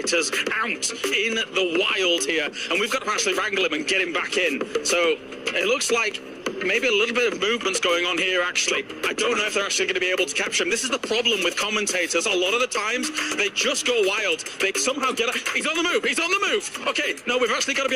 out in the wild here, and we've got to actually wrangle him and get him back in. So it looks like maybe a little bit of movement's going on here, actually. I don't know if they're actually going to be able to capture him. This is the problem with commentators. A lot of the times, they just go wild. They somehow get a... He's on the move! He's on the move! Okay, no, we've actually got to be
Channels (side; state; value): both; identical; correlation 1.00